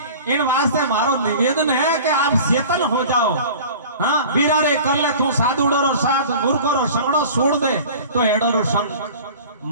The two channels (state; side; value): inverted; both; correlation -0.41